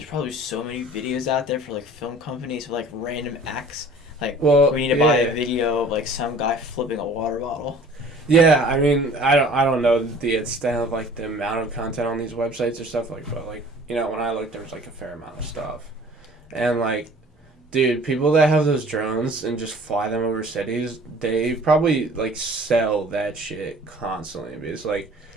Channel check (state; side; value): normal; both; correlation 0.49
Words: probably so many videos out there for like film companies for like random acts. Like, Well, we need to buy a video of like some guy flipping a water bottle. Yeah, I mean, I don't know the extent of like the amount of content on these websites or stuff like, but like, you know, when I looked, there was like a fair amount of stuff, and like, dude, people that have those drones and just fly them over cities, they probably like sell that shit constantly because like.